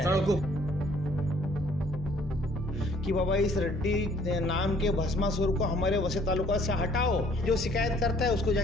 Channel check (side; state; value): both; normal; correlation 0.60